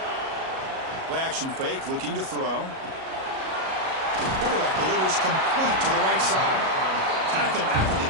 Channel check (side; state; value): left; late; 37 ms